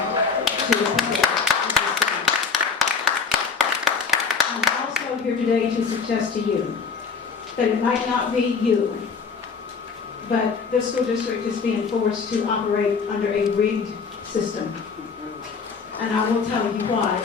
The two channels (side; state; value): right; quieter; 5.3 dB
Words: to the people. I'm also here today to suggest to you that it might not be you, but this school district is being forced to operate under a rigged system. And I will tell you why